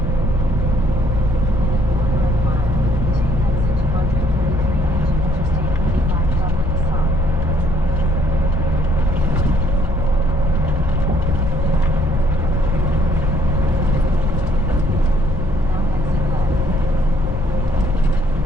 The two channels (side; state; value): both; normal; correlation 0.64